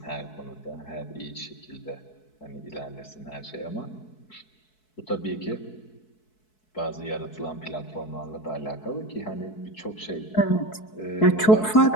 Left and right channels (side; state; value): right; late; 4.6 ms